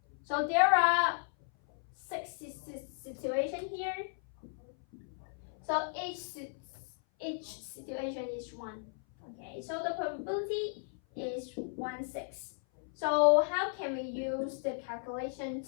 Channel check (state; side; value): silent; right; 54 dB below the other